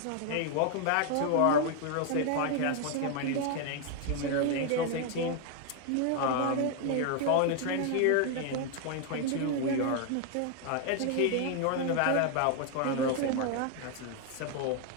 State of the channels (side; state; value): both; different; correlation 0.00